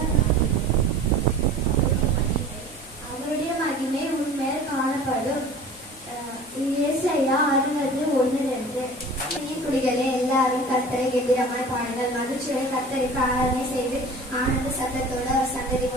மகிமை உண்மையில் காணப்படும். ஏசாயா 60:1-2. குடிகளே, எல்லாரும் கர்த்தரை கெம்பீரமாய் பாடுங்கள், மகிழ்ச்சியோட கர்த்தருக்கு ஆராதனை செய்து ஆனந்த சத்தத்தோடு அவர் சந்ததி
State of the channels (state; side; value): normal; both; correlation 0.41